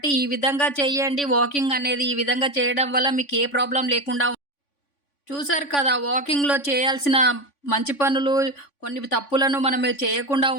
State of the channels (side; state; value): right; late; 3.5 ms